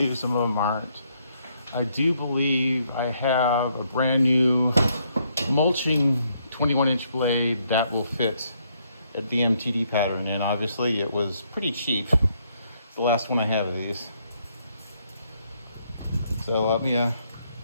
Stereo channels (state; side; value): inverted; both; correlation -0.73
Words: some of them aren't. I do believe I have a brand new mulching 21-inch blade that will fit at the MTD pattern, and obviously it was pretty cheap. It's the last one I had of these. So let me